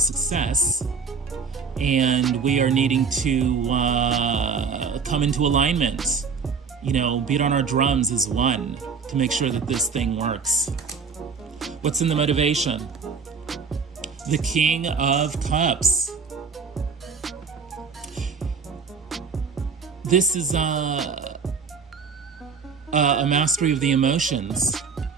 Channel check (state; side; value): quieter; left; 5.5 dB